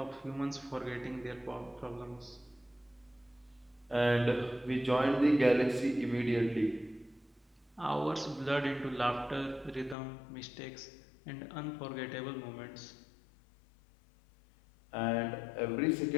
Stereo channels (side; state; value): right; drops out; at 10.0 s